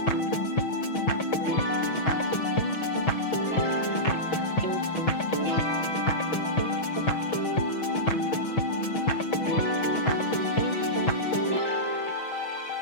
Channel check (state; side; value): late; right; 6.3 ms